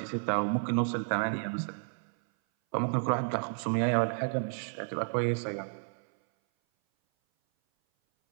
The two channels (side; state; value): left; silent; 57 dB below the other